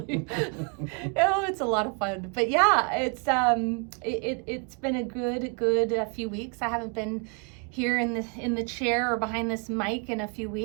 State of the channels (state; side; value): quieter; left; 36.2 dB